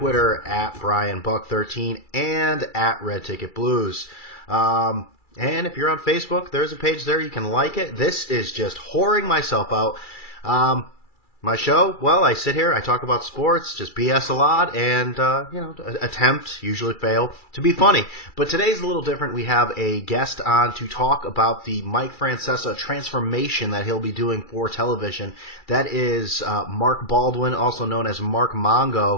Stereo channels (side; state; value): right; late; 2.3 ms